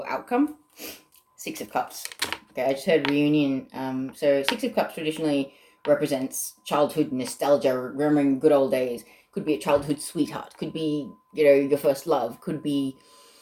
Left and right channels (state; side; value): identical; both; correlation 1.00